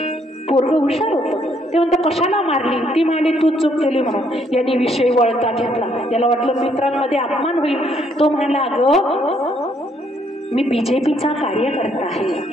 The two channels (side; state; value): both; normal; correlation 0.69